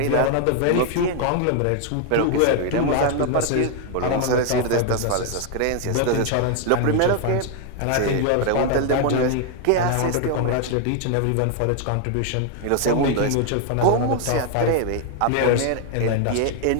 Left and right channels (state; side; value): different; both; correlation 0.00